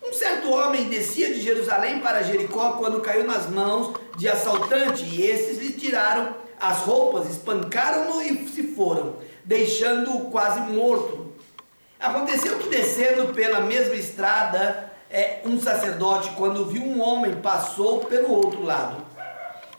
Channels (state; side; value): inverted; both; correlation -1.00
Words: um certo homem descia de Jerusalém para Jericó quando caiu nas mãos de assaltante, e esses lhe tiraram as roupas, espancaram-no e se foram, deixando-o quase morto. Aconteceu que, descendo pela mesma estrada, um sacerdote, quando viu um homem, passou pelo outro lado.